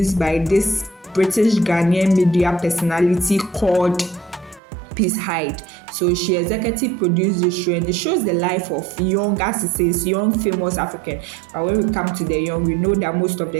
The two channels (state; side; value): drops out; left; at 4.6 s